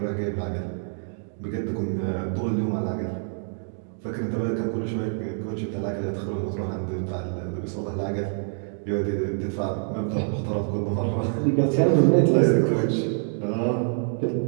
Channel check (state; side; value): silent; left; 61 dB below the other